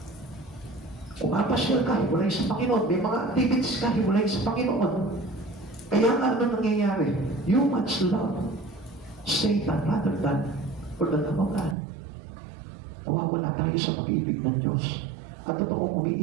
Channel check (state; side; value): drops out; left; at 11.8 s